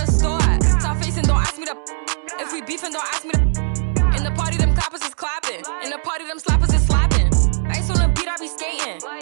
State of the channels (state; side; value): silent; left; digital silence